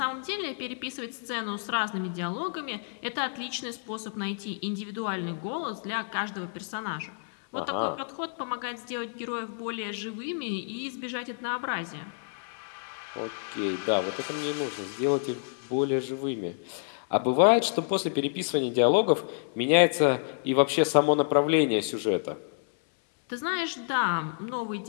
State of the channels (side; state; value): right; silent; 59 dB below the other